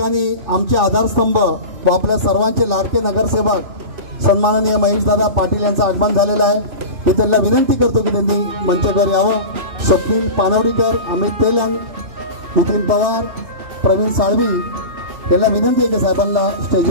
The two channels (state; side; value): late; left; 2.7 ms